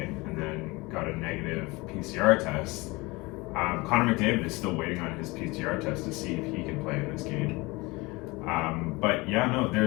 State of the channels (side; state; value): right; quieter; 23.7 dB